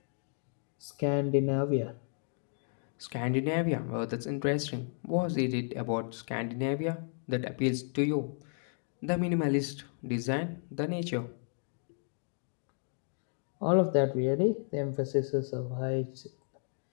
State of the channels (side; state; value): right; silent; 56 dB below the other